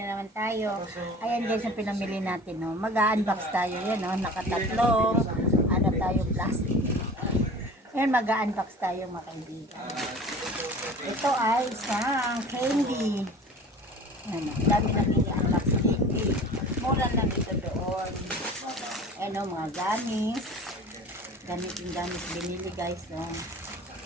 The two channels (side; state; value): both; normal; correlation 0.41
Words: naman tayo. Ayan guys, ang pinamili natin. No? Mag-unbox tayo. Yan, no? Nakatatlong. Ano tayo, plastic. Ayan, mag-unbox tayo mga kaibigan. Ito ay isang candy. Ano, dami na unbox candy. Mura lang ito doon. Ano, mga gamis. Gamit binili guys. No?